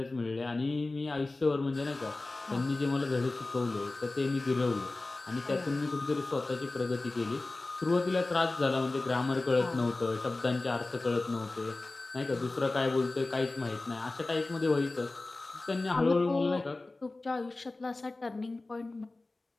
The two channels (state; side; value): quieter; right; 3.1 dB